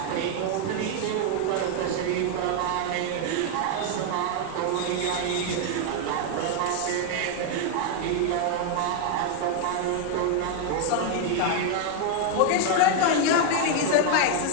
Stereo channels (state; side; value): different; both; correlation 0.00